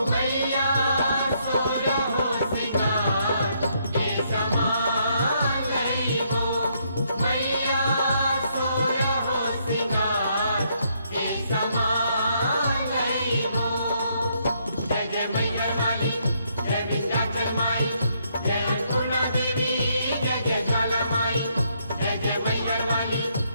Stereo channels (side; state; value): both; inverted; correlation -0.73